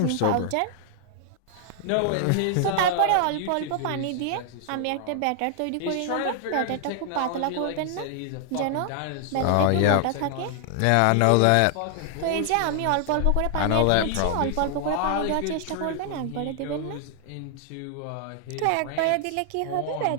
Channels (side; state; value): both; different; correlation 0.00